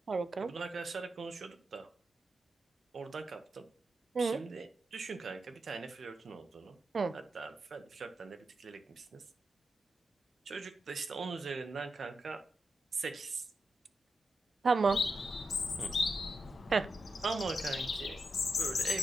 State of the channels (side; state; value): both; normal; correlation 0.87